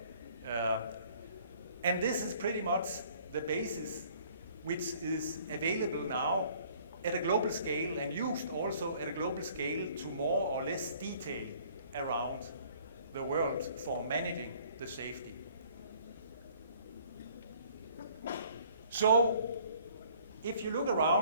And this is pretty much the basis which is available now at a global scale and used also at a global scale to more or less detail around the world for managing the safety. So, if you look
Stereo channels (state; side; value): inverted; both; correlation -0.57